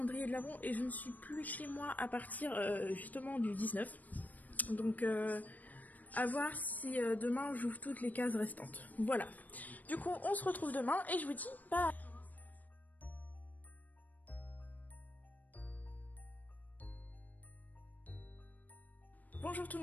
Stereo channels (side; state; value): right; late; 0.080 ms